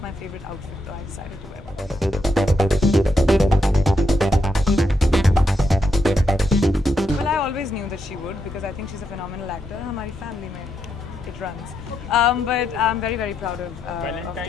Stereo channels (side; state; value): both; normal; correlation 0.81